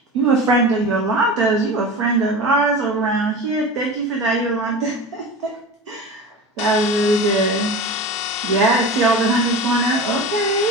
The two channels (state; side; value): normal; both; correlation 0.31